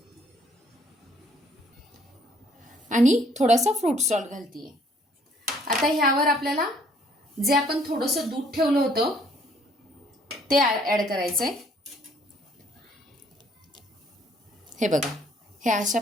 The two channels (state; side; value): normal; both; correlation 0.62